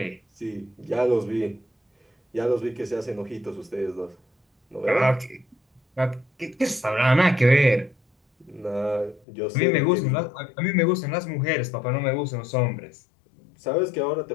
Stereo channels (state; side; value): drops out; right; at 9.2 s